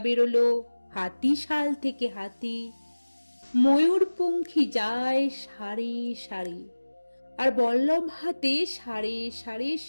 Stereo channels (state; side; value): inverted; both; correlation -1.00